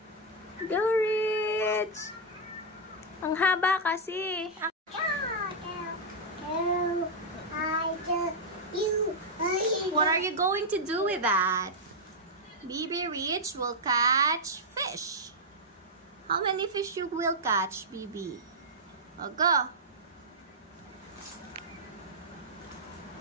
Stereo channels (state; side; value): normal; both; correlation -0.04